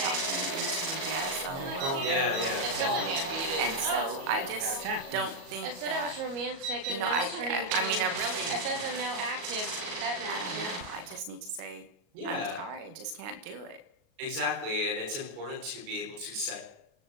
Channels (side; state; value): left; late; 36 ms